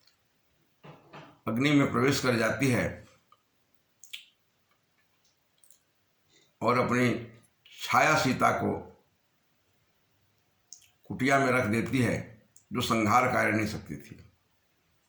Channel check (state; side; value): identical; both; correlation 1.00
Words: अग्नि में प्रवेश कर जाती है और अपनी छाया सीता को कुटिया में रख देती है, जो संहारकारिणी शक्ति थी।